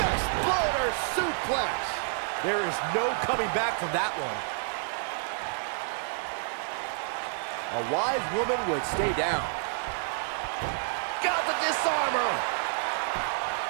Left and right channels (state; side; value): silent; left; digital silence